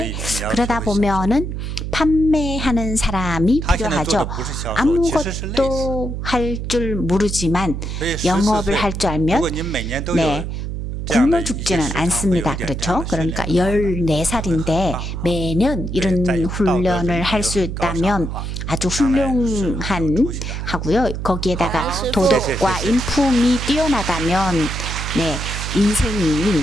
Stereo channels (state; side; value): noise; right; hum, 5 dB below the sound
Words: 그러다 보면은 판매하는 사람이 필요하죠. 아무것도 할 줄 모르지만 영업을 할 줄 알면 네, 굶어 죽지는 않습니다. 그렇죠? 그러니까 14살인데 매년 이런 훈련을 할 수 있다면 아주 훌륭한 하고요. 거기에다가 도덕과 인품이 뛰어나다면 네, 인생이